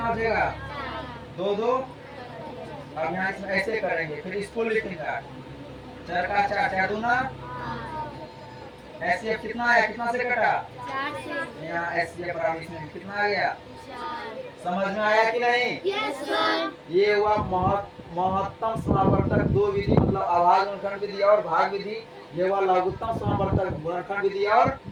हो जाएगा 2 2। अब यहाँ इसमें ऐसे करेंगे, फिर इसको लिखेंगे 4 का 4 4 दूना, एचसीएफ कितना है, कितना से कटा 4 से, यहाँ एचसीएफ बराबर इसमें कितना आ गया 4। समझ में आया कि नहीं? Yes sir. ये हुआ महत्तम समावर्तक 2 विधि, मतलब अभाज्य गुणनखंड विधि और भाग विधि। ये हुआ लघुत्तम समावर्तक गुणनखंड विधि और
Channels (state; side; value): identical; both; correlation 1.00